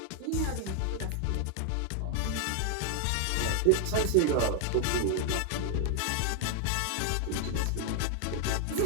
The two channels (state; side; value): different; both; correlation 0.00